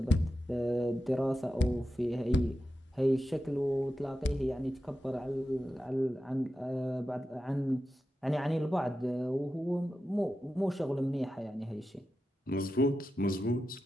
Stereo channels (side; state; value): both; normal; correlation 0.91